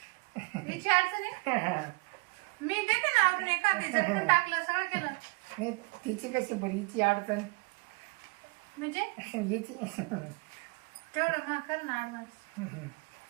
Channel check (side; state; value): left; quieter; 29.2 dB